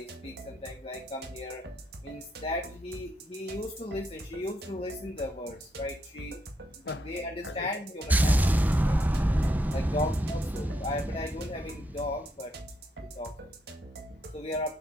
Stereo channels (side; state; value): both; normal; correlation 0.77